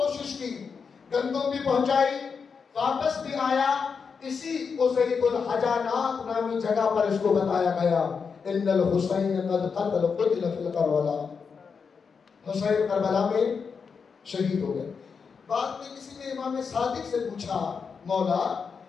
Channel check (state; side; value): quieter; right; 5.7 dB